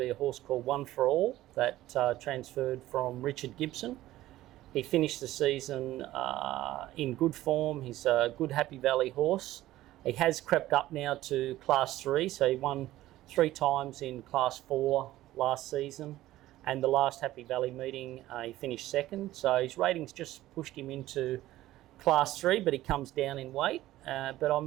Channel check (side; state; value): left; quieter; 15.4 dB